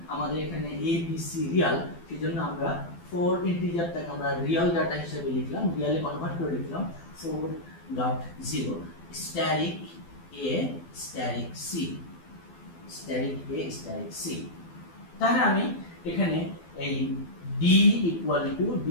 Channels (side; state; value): right; late; 12 ms